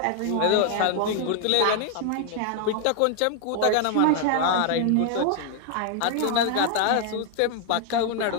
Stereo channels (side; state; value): both; different; correlation 0.00